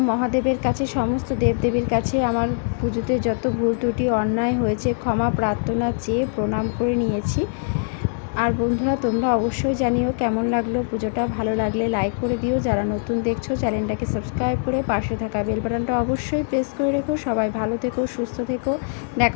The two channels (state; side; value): silent; right; digital silence